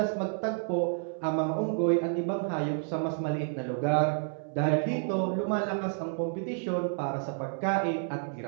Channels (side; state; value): left; silent; 58 dB below the other